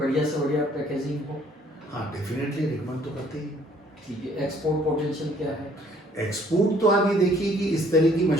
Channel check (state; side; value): normal; both; correlation 0.61